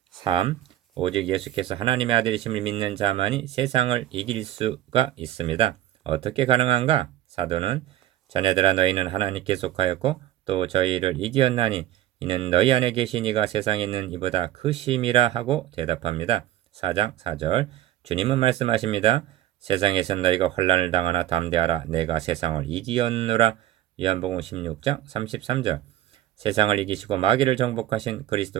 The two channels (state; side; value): quieter; left; 13.3 dB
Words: 3. 오직 예수께서 하나님의 아들이심을 믿는 자만이 세상을 이길 수가 있습니다. 어떻게 가능한가? 사도는 자녀들아 너희는 하나님께 속하였고 또 저희를 이기었나니 이는 너희 안에 계신 이가 세상에 있는 이보다 크심이라 하고 대답합니다. 4장 4절 주님은 말씀하십니다. 세상에서 너희가 환난을 당하나 담대하라. 내가 세상을 이기었노라. 요한복음 16장 33절 세상을 이기시고 마귀를 정복하신